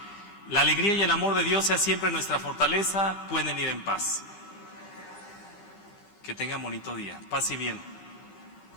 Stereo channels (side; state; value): right; late; 15 ms